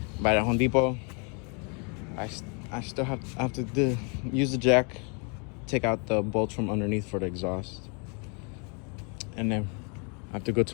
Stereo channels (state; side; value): quieter; right; 35.5 dB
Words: By the Home Depot. I still have to use the jack, take out the bolts from underneath for the exhaust, and then I have to go